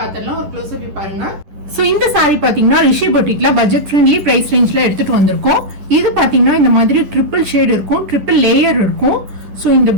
ஒரு க்ளோஸ் அப் பாருங்க. ஸோ இந்த சாரீ பாத்தீங்கன்னா ரிஷி பொட்டிக்ல பட்ஜெட் ஃப்ரெண்ட்லி பிரைஸ் ரேஞ்ச்ல எடுத்துட்டு வந்திருக்கோம். இது பாத்தீங்கன்னா இந்த மாதிரி ட்ரிபிள் ஷேட் இருக்கும், ட்ரிபிள் லேயர் இருக்கும். ஸோ இந்த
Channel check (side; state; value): left; late; 10 ms